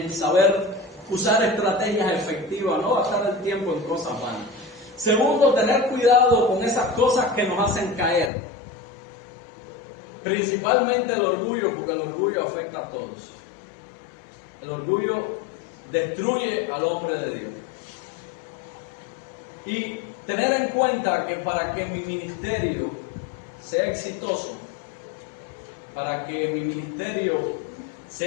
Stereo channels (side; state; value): right; drops out; at 8.3 s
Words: saber usar estrategias efectivas, no gastar el tiempo en cosas vanas. Segundo, tener cuidado con esas cosas que nos hacen caer, principalmente el orgullo, porque el orgullo afecta a todos. El orgullo destruye al hombre de Dios. Y tener en cuenta que para que mi ministerio sea exitoso, para que mi ministerio